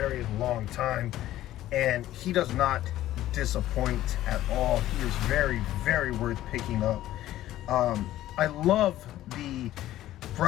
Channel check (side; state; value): right; quieter; 14.1 dB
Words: long time, and he does not disappoint at all. He is very, very worth picking up. I love the